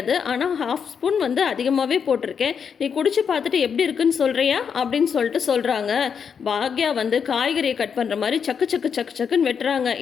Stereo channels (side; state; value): right; quieter; 6.8 dB